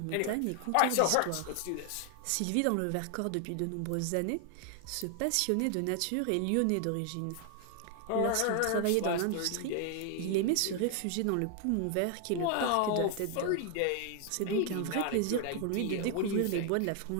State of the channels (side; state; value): both; different; correlation 0.00